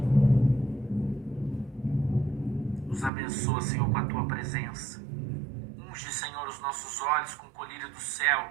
nos abençoa, Senhor, com a Tua presença. Unge, Senhor, os nossos olhos com o colírio do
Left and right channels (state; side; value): drops out; left; at 3.1 s